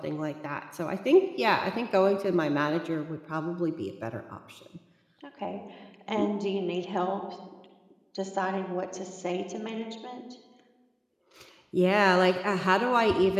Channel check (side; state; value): both; identical; correlation 1.00